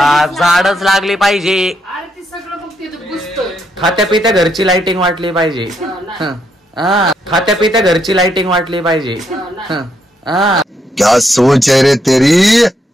झाडच लागली पाहिजे. खात्या पित्या घरची लाइटिंग वाटली पाहिजे. खात्या पित्या घरची लाइटिंग वाटली पाहिजे. क्या सोच है रे तेरी?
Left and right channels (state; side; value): normal; both; correlation 0.77